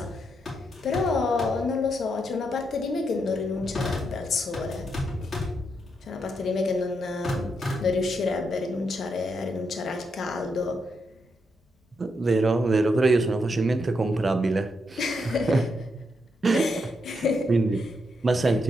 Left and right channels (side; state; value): both; normal; correlation 0.81